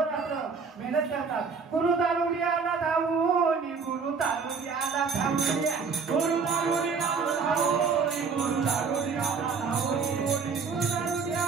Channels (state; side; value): quieter; left; 5.3 dB